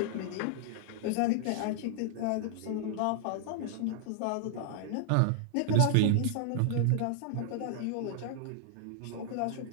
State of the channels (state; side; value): different; both; correlation -0.01